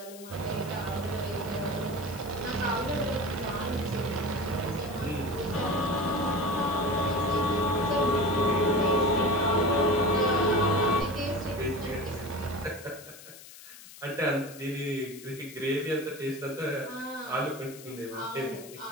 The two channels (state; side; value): noise; left; hiss, 17 dB below the sound